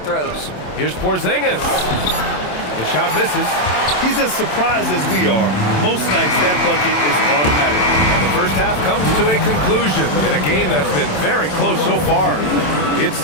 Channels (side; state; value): right; late; 27 ms